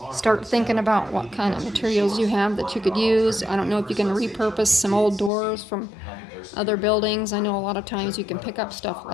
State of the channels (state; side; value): drops out; right; at 5.3 s